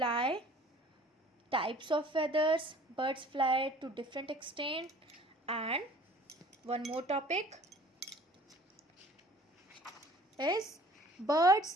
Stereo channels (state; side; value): normal; both; correlation 0.51